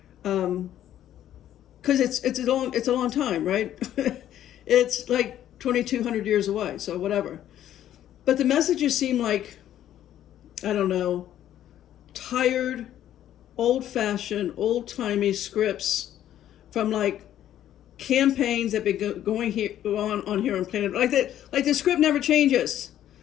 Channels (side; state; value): right; quieter; 11.6 dB